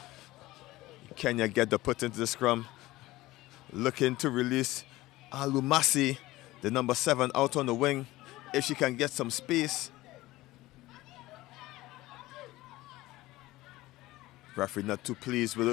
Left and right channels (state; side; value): quieter; right; 18.1 dB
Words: Kenya get the put into the scrum. Looking to release Alumasi, the number 7, out on the wing, if she can get some space. Referee not too pleased with